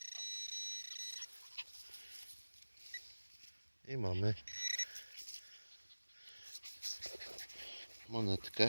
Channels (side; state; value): both; inverted; correlation -1.00